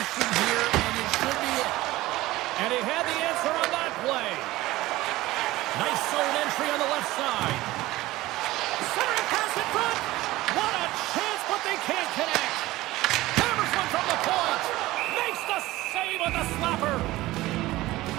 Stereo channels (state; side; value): quieter; left; 17.8 dB